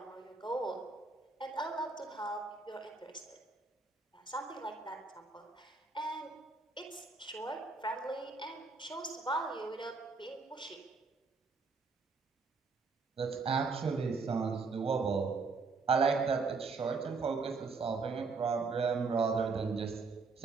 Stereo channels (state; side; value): quieter; left; 4.4 dB